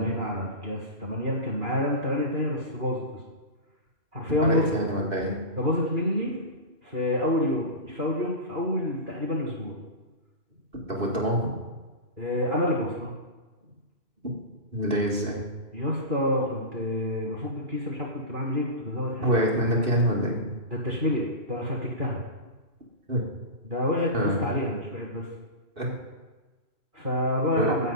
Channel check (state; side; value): late; left; 2.6 ms